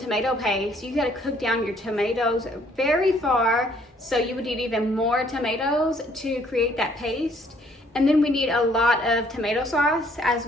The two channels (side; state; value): both; normal; correlation 0.63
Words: paste, you gotta cook down your tomatoes very far. So you would need even more tomatoes to create that paste. And then we need a lot of tomato sauce as